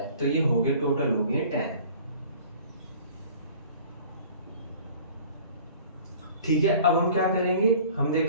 तो ये हो गए टोटल हो गए 10, ठीक है। अब हम क्या करेंगे, हम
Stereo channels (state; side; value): inverted; both; correlation -0.48